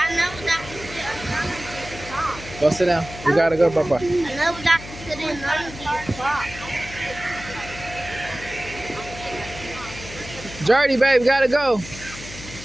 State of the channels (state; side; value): noise; left; hum, 14 dB below the sound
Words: never got to sit on none of these cars. Go sit down. You gotta go, bye-bye. I never got to sit in none of these cars. Jordy, babe, gotta go.